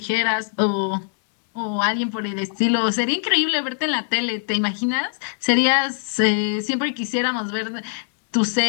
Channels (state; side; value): silent; right; 64 dB below the other